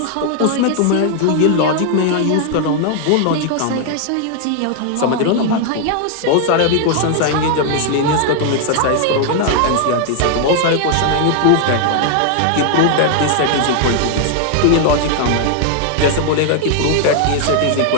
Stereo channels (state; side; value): different; both; correlation 0.00